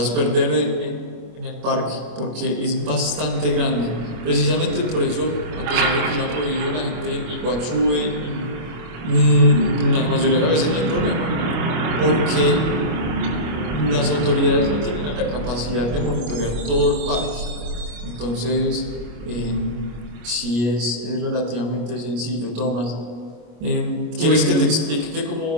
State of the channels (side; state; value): left; late; 25 ms